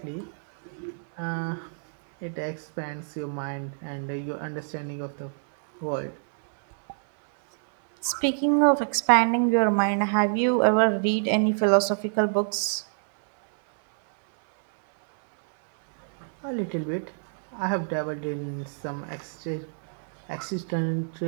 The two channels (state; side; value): silent; left; 61 dB below the other